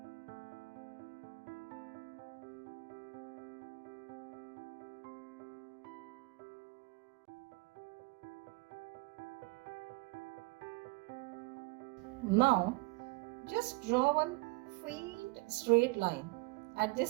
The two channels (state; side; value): quieter; left; 25.3 dB